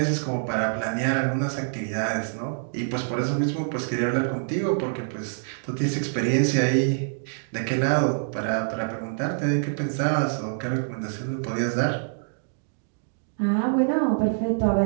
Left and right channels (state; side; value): silent; left; digital silence